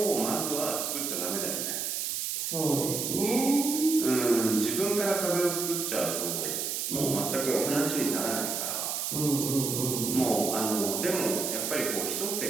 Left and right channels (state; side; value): noise; right; hiss, 2 dB below the sound